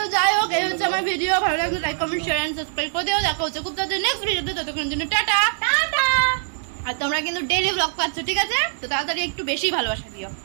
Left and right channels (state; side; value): silent; left; digital silence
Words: যাই হোক, এই হচ্ছে আমার ভিডিও। ভালো লাগলে like comment share and subscribe করে দিও। দেখা হচ্ছে খুব তাড়াতাড়ি নেক্সট ভিডিওতে, ততক্ষণের জন্য টাটা টাটা। আর তোমরা কিন্তু ডেইলি ব্লগ পাচ্ছ, ঠিক আছে, তো তাড়াতাড়ি একটু বেশি ভালোবাসা দিও।